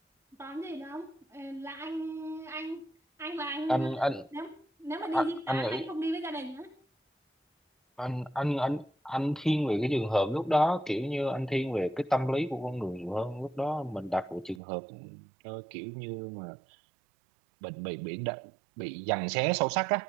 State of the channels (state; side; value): drops out; left; at 14.6 s